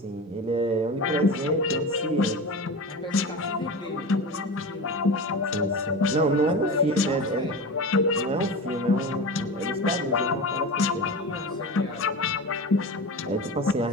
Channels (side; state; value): both; normal; correlation 0.27